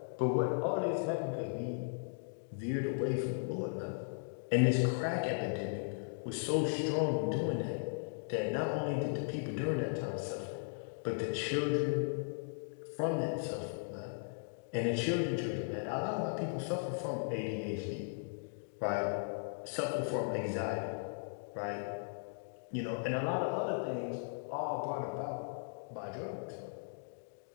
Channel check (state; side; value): silent; right; digital silence